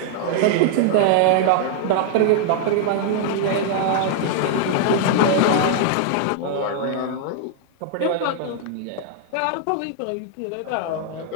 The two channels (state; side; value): different; both; correlation 0.00